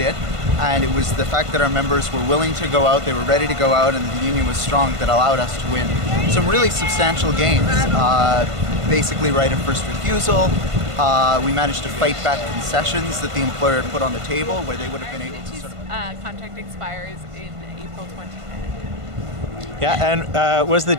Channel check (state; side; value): late; left; 1.5 ms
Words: and it was the fact that our members were willing to go out, they were ready to go out, and the union was strong that allowed us to win some really substantial gains. Basically right of first refusal. We managed to fight back concessions that the employer had put on the table where they would have been able to sort of... contract expires in April 2010. Yeah, and was the